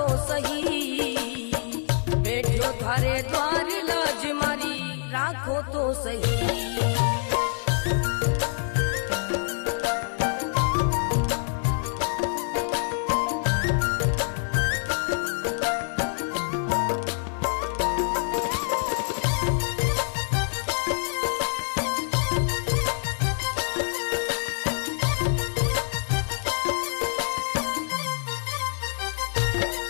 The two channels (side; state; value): right; silent; 61 dB below the other